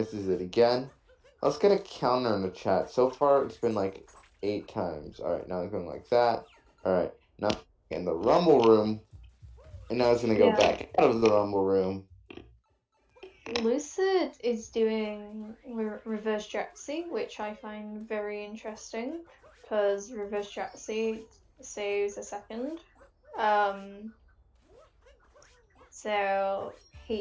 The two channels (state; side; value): identical; both; correlation 1.00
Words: it again. Let's get a counter in the chat. So far, it's been, like, 8 times. Alright, now it's going like that. Alright, now in the rumble room. And now it's going to go back out of the rumble room. Lucid is doing reverse Jaxi, which I find very interesting because reverse Jaxi saves a second. So